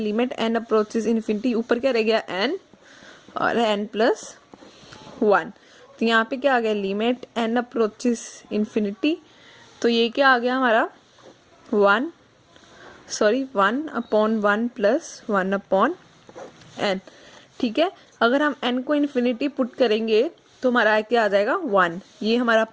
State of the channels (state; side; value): identical; both; correlation 1.00